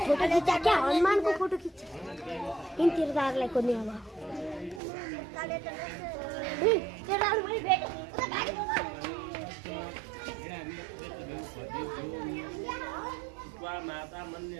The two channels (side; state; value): left; drops out; at 4.8 s